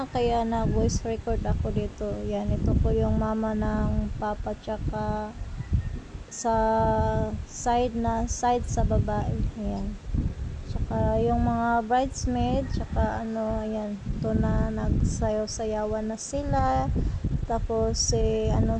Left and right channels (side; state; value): both; identical; correlation 1.00